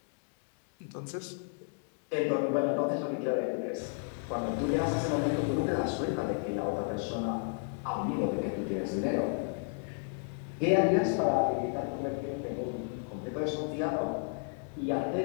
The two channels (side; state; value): right; silent; 56 dB below the other